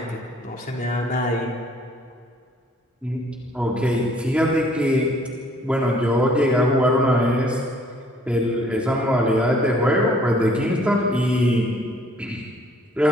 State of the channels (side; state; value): both; normal; correlation 0.59